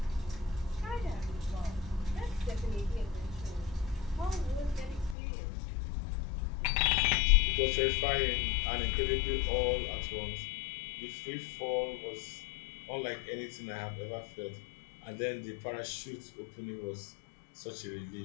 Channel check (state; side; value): drops out; right; at 5.2 s